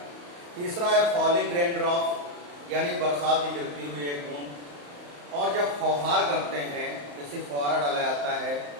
तीसरा है फॉलिंग रेन ड्रॉप, यानी बरसात की गिरती हुई एक बूंद। और जब फौहार करते हैं, जैसे फौहारा डाला जाता है,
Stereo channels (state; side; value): late; left; 35 ms